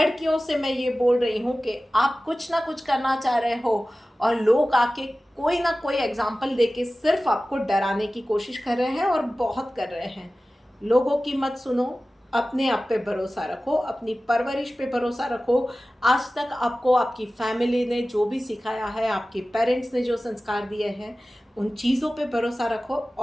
से मैं ये बोल रही हूँ कि आप कुछ ना कुछ करना चाह रहे हो और लोग आके कोई ना कोई एग्जाम्पल देके सिर्फ आपको डराने की कोशिश कर रहे हैं, और बहुत कर रहे हैं। लोगों की मत सुनो, अपने आप पे भरोसा रखो, अपनी परवरिश पे भरोसा रखो। आज तक आपको आपकी फैमिली ने जो भी सिखाया है, आपके पेरेंट्स ने जो संस्कार दिए हैं, उन चीज़ों पे भरोसा रखो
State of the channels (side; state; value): both; normal; correlation 0.96